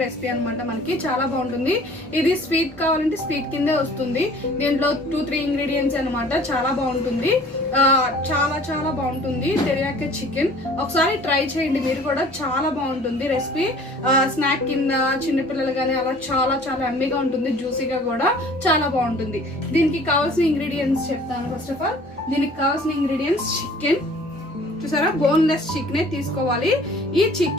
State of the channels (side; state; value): both; normal; correlation 0.50